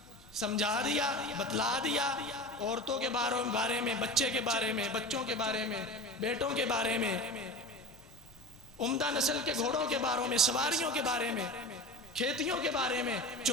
سمجھا دیا، بتلا دیا، عورتوں کے بارے میں، بچے کے بارے میں، بچوں کے بارے میں، بیٹوں کے بارے میں، عمدہ نسل کے گھوڑوں کے بارے میں، سواریوں کے بارے میں، کھیتیوں کے بارے میں،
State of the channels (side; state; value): both; normal; correlation 0.30